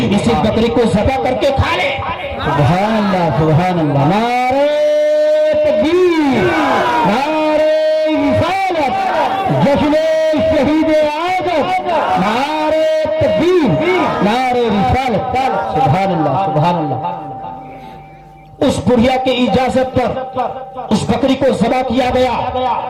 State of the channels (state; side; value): identical; both; correlation 1.00